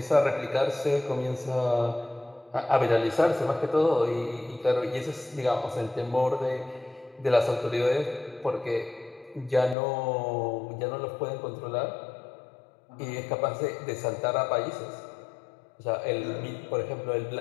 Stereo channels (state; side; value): drops out; right; at 9.8 s